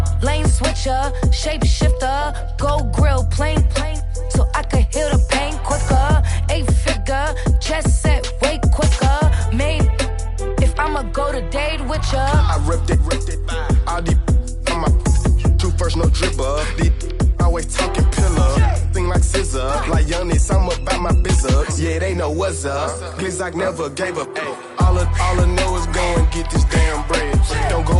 lane switcher, shapeshifter, go grill, plane, so I can heal the pain quicker. 8-figure, jet set, way quicker. Made, if I'ma go to date with ya. I ripped it, all these on my two first, no dribble. These always talking pillar, thing like scissor. Like youngest, I'm about my business. Yeah, they know what's up. Glizzock never gave up. All I know is go and get this damn bread. Don't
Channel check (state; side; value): identical; both; correlation 1.00